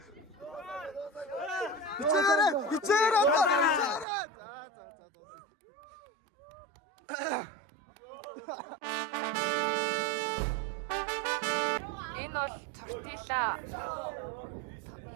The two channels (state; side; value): drops out; left; at 4.0 s